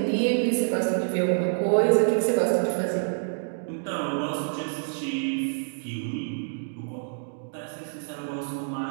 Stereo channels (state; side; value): silent; left; digital silence